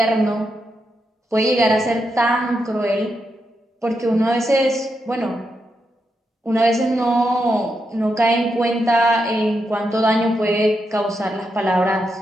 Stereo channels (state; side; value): normal; both; correlation 0.84